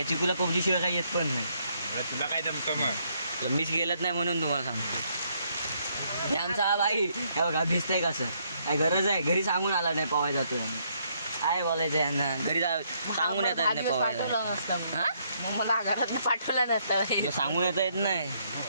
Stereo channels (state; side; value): inverted; both; correlation -0.71